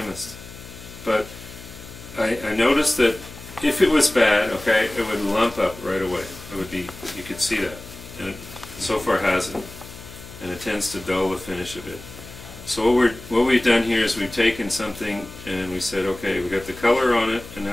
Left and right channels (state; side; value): noise; left; hum, 16 dB below the sound